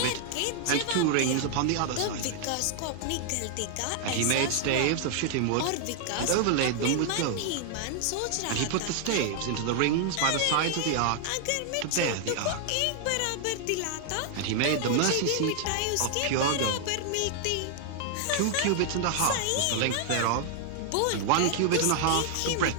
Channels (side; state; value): both; different; correlation 0.00